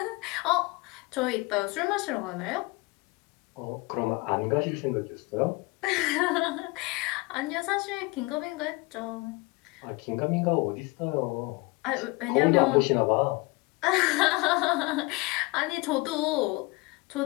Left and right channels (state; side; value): quieter; right; 25.1 dB